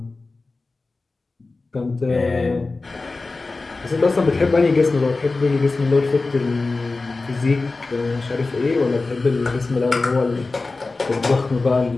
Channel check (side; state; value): right; quieter; 3.6 dB